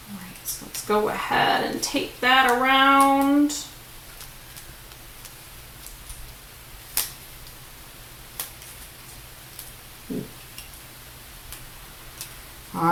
right, so let's go ahead and tape that around. All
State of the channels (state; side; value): identical; both; correlation 1.00